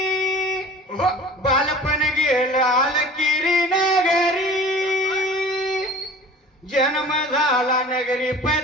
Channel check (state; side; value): normal; both; correlation 0.43